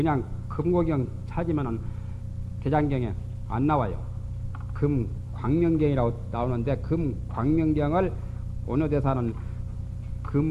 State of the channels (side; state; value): both; identical; correlation 1.00